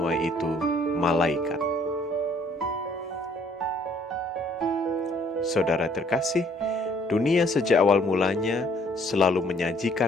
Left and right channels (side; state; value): both; normal; correlation 0.61